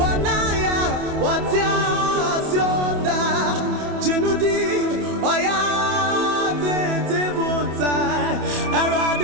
watia sionda, jinudi, oya, tetibuta,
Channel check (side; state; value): left; late; 27 ms